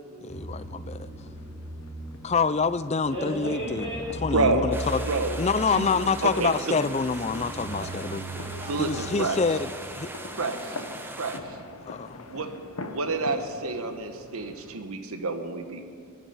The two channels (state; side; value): normal; both; correlation -0.04